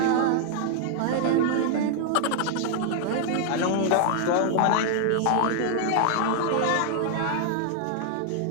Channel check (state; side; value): different; both; correlation 0.00